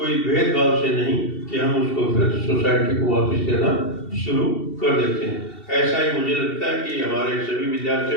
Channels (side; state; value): right; late; 2.7 ms